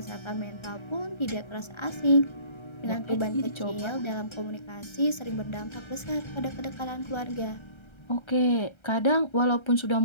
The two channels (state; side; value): late; right; 1.3 ms